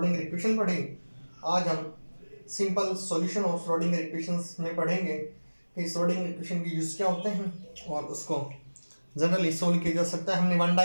इक्वेशन पढ़ी, आज हम simple solution of Schrodinger equations में पढ़ेंगे कि श्रोडिंगर इक्वेशन के यूज क्या होते हैं और उसको जनरली सोल्व किया जा सकता है। हमने 1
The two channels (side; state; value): both; inverted; correlation -1.00